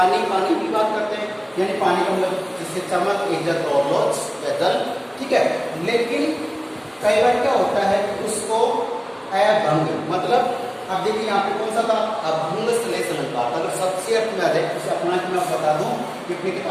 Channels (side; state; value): both; identical; correlation 1.00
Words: पानी की बात करते हैं, यानी पानी का मतलब जिससे चमक, इज्जत और लोच या जल, ठीक है? लेकिन कई बार क्या होता है कि उसको अभंग, मतलब अब देखिए यहाँ पे कौन सा था? अभंग श्लेष अलंकार। अगर सबसे अर्थ में आ जाए, उसे अपना कि मैं बता दूं कि अपनी